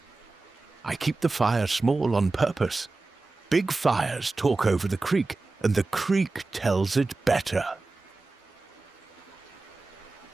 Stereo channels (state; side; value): quieter; left; 3.5 dB